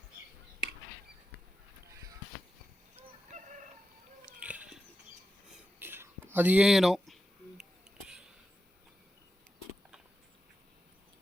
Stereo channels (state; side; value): normal; both; correlation 0.90